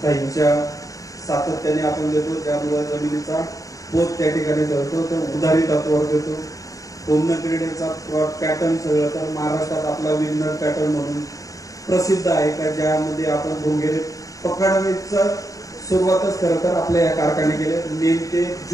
दहीच्या सातत्याने आपण देतो, त्यामुळे जमिनीचा पोत त्या ठिकाणी ठरतो. तर उधारी तत्वावर देतो. पूर्ण क्रीडेचा पॅटर्न सगळं तर महाराष्ट्रात आपला विनर पॅटर्न म्हणून प्रसिद्ध आहे का, ज्यामध्ये आपण भोंगेरे पकडण्याचं सुरुवातच खरं तर आपल्या या कारखाने केले. मे ते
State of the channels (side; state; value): right; late; 0.16 ms